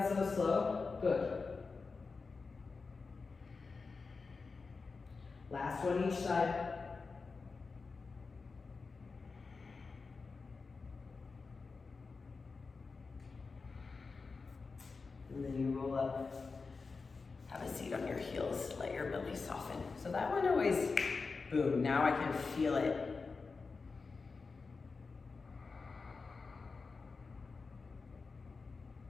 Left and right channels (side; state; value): right; quieter; 4.4 dB